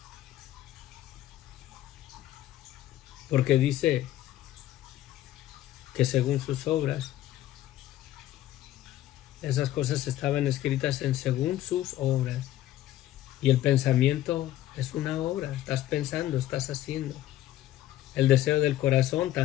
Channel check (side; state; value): right; quieter; 13.7 dB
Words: Porque dice que según sus obras, esas cosas estaban escritas según sus obras. Y el pensamiento es una obra, estás pensando, estás haciendo. El deseo del corazón